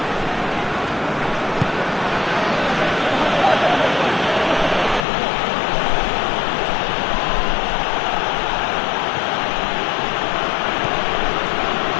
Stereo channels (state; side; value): drops out; right; at 5.1 s